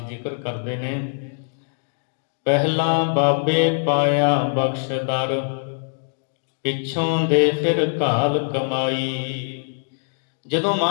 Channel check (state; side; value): silent; right; digital silence